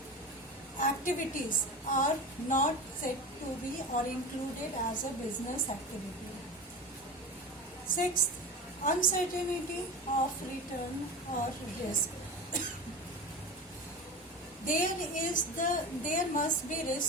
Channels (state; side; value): normal; both; correlation 0.28